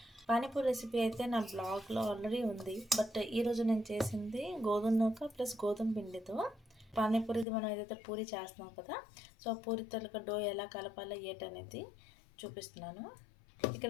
పానీపూరి రెసిపీ అయితే నా బ్లాగ్లో ఆల్రెడీ ఉంది. బట్ ఈరోజు నేను చేసింది గోధుమ నూక ప్లస్ గోధుమ పిండితో పానీపూరిది. మనం ఏదైతే పూరి చేస్తున్నాం కదా, సో పూరి తలక డో ఎలా కలపాలో ఏటనేది చూపిస్తున్నాను.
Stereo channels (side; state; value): right; drops out; at 7.5 s